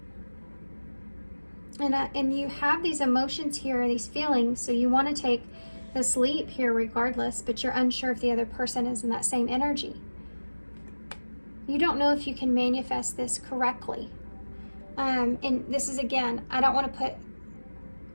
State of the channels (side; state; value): both; inverted; correlation -1.00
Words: And you have these emotions here, these feelings, so you want to take this leap here regardless, but you're unsure if the other person is in that same energy. You don't know if you can manifest this correctly. And this is, again, I don't want to put